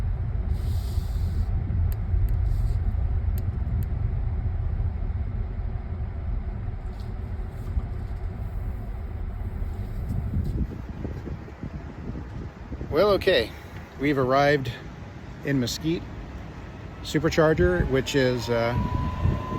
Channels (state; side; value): identical; both; correlation 1.00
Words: Well, okay, we've arrived in Mesquite Supercharger, which is